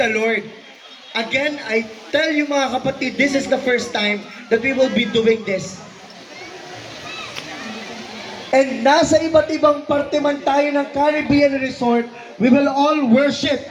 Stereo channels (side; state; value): both; identical; correlation 1.00